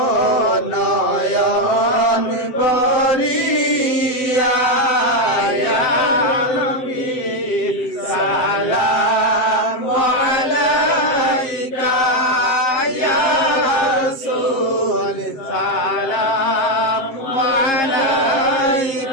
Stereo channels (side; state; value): right; late; 7.8 ms